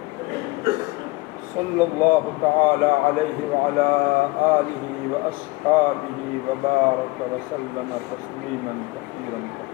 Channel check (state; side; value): quieter; right; 22.1 dB